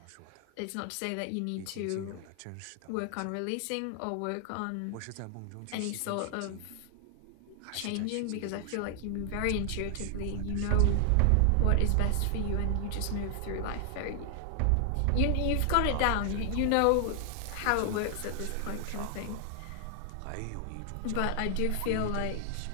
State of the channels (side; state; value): both; different; correlation 0.00